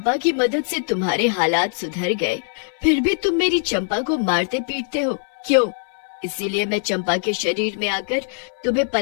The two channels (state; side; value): silent; right; 58 dB below the other